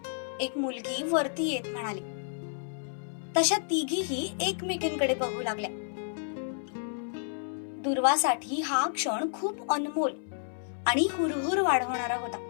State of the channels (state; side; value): silent; right; 57 dB below the other